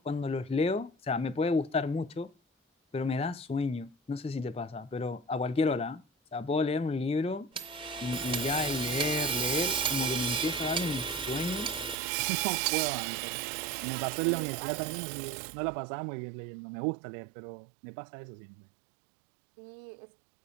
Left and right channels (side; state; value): left; drops out; at 12.0 s